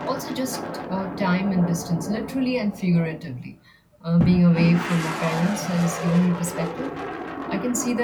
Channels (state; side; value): identical; both; correlation 1.00